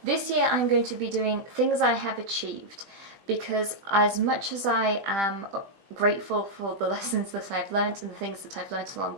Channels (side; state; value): left; late; 20 ms